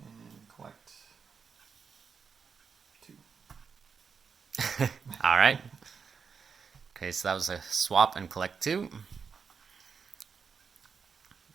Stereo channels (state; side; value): quieter; left; 5.9 dB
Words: collect 2. All right. Okay, so that was a swap and collect 2.